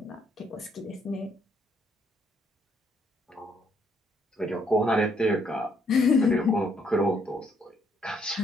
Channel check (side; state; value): both; normal; correlation 0.70